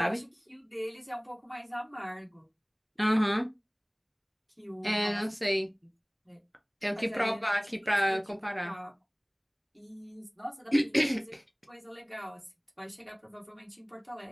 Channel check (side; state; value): both; identical; correlation 1.00